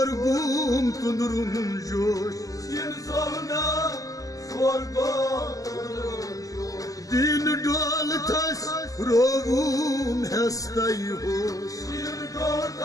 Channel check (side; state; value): right; late; 0.17 ms